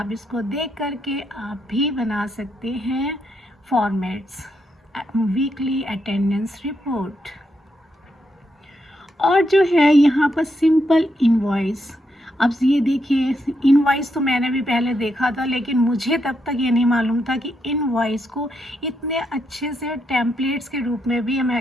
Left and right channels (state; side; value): normal; both; correlation 0.80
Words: इसको देख करके आप भी बना सकते हैं फॉर्मेट्स वीकली अटेंडेंस रिपोर्ट। और जो है यहाँ पर सिंपल इनवॉइस। अब ये देखिए इनवॉइस तो मैंने भी पहले देखा था, लेकिन मुझे तब तक ये नहीं मालूम था कि इनवॉइस को इतने अच्छे से टेम्पलेट्स के रूप में भी हम